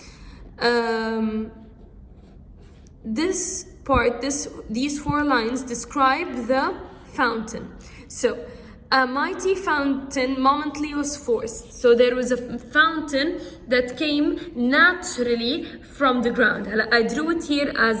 These 4 lines describe the fountain. So, a mighty fountain momently was forced. So there was a fountain that came naturally from the ground. I drew it here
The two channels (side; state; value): both; identical; correlation 1.00